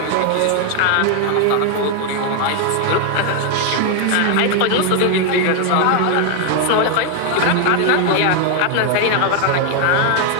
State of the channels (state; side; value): different; both; correlation 0.01